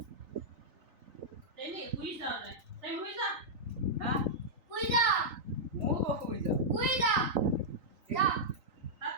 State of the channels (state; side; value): late; left; 3.9 ms